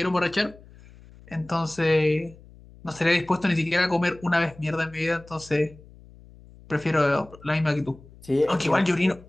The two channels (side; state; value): left; noise; hum, 22 dB below the sound